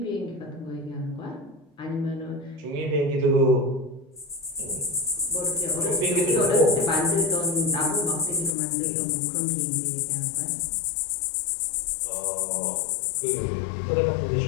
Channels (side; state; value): right; drops out; at 8.5 s